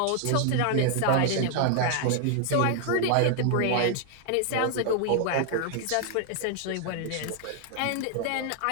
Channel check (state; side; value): different; both; correlation 0.00